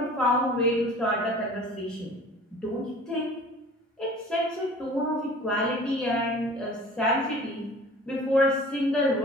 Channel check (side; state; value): both; normal; correlation 0.45